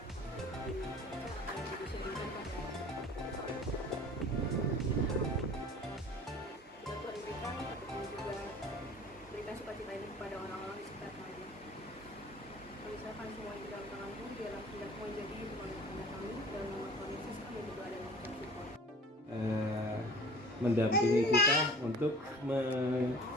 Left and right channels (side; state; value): both; normal; correlation 0.45